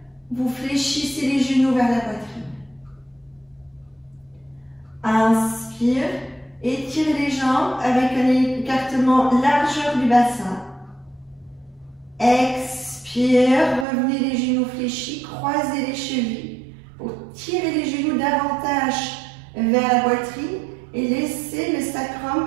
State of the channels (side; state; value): left; drops out; at 13.9 s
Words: vous fléchissez les genoux vers la poitrine. Inspire, étirez les jambes avec un écartement largeur du bassin. Expire, revenez les genoux fléchis, croisez les chevilles pour tirer les genoux davantage vers la poitrine et laissez le sacrum